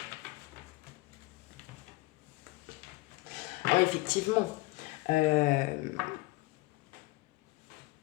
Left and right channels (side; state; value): right; quieter; 21.6 dB